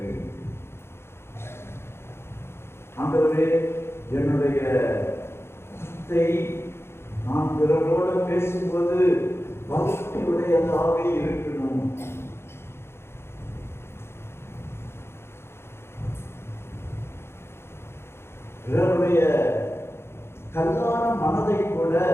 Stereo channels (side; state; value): right; late; 0.12 ms